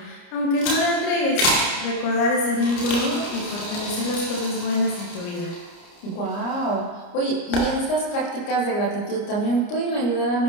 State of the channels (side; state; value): right; late; 29 ms